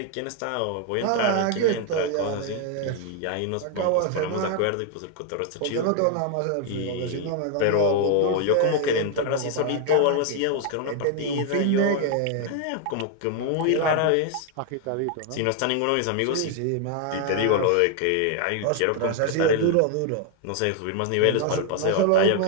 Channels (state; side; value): different; both; correlation 0.01